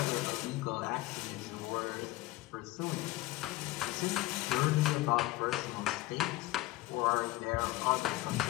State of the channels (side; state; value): right; quieter; 17.9 dB